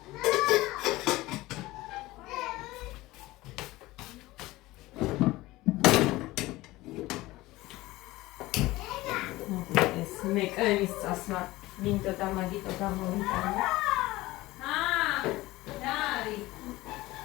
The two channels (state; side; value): quieter; right; 18.9 dB